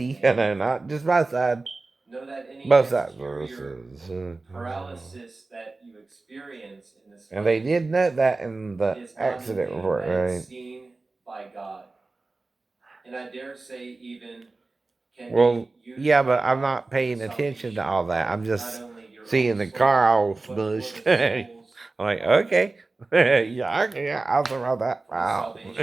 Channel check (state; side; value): quieter; left; 3.5 dB